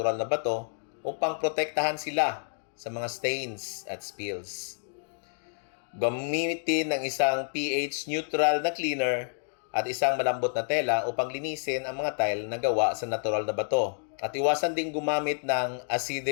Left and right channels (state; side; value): silent; right; digital silence